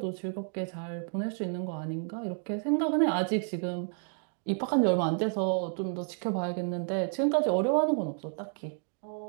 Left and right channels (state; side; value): silent; left; 57 dB below the other